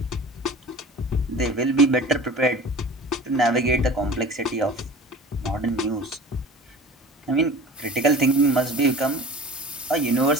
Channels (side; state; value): both; normal; correlation 0.40